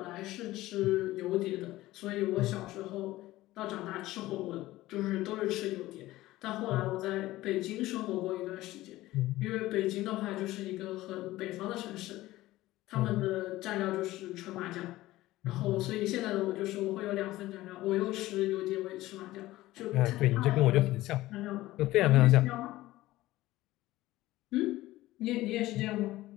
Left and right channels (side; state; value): right; quieter; 17.0 dB